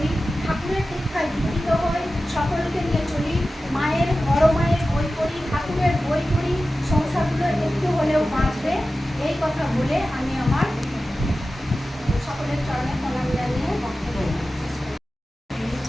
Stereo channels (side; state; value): both; normal; correlation 0.94